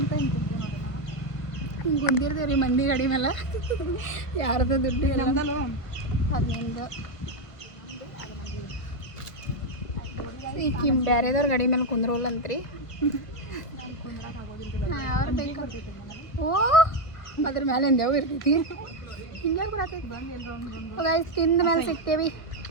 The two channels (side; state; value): right; late; 1.5 ms